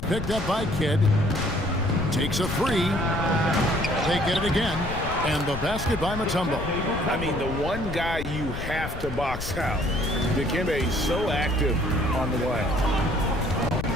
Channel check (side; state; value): left; noise; rumble, 7 dB below the sound